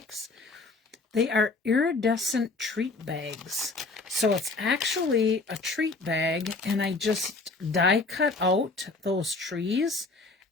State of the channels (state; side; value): quieter; right; 3.6 dB